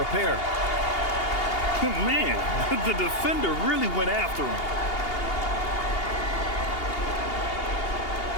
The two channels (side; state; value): right; late; 2.8 ms